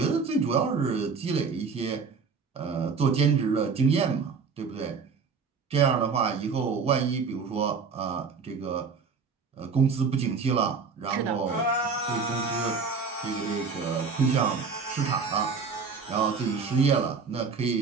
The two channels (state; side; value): quieter; left; 5.3 dB